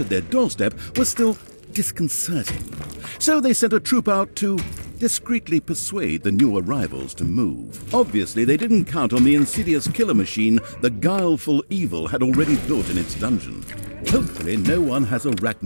their doorstep was still disconcerting. So they sent a troop out to discreetly persuade the new arrivals to move. Obviously, they didn't count on the insidious killer machine the guileful evil had already built in its dungeon. Hopefully, no one has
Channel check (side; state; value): both; inverted; correlation -1.00